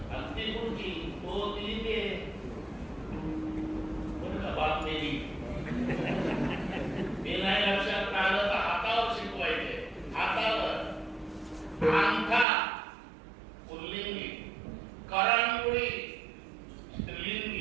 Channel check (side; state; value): left; drops out; at 12.5 s